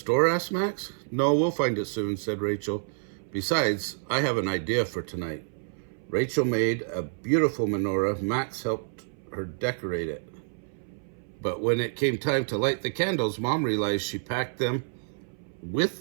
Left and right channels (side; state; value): left; silent; 59 dB below the other